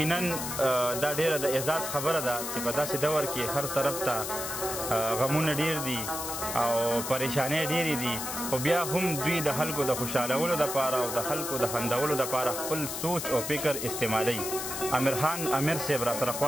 دا ډیره د اعزاز خبره ده چې په داسې دور کې هر طرف ته غمونه ډیر دي او پریشانۍ ډیرې دي، خو بیا هم دوی د خلکو د خوشحالولو دپاره او د خلکو د خندولو دپاره خپل سوچ او فکر استعمالوي. امیر خان امیر صاحب راسره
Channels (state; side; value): noise; left; hiss, 5 dB below the sound